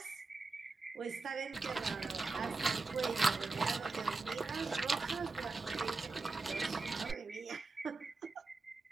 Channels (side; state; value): left; quieter; 3.9 dB